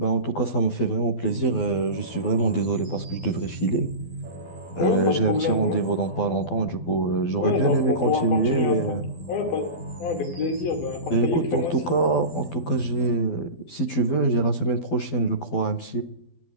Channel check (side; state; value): right; late; 12 ms